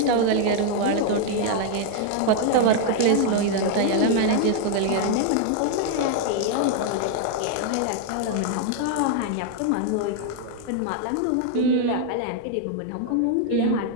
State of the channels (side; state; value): both; different; correlation 0.00